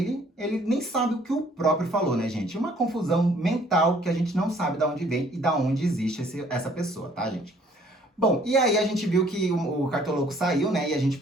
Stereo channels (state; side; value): normal; both; correlation 0.59